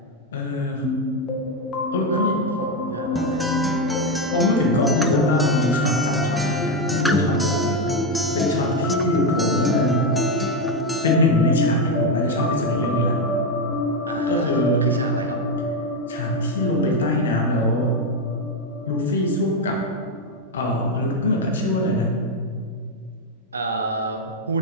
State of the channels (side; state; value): both; normal; correlation 0.07